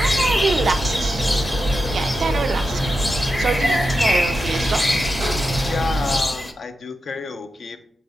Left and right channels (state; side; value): normal; both; correlation 0.89